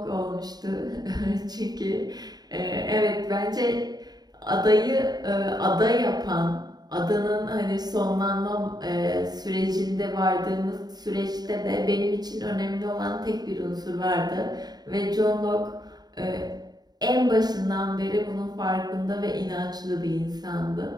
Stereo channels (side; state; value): left; late; 0.19 ms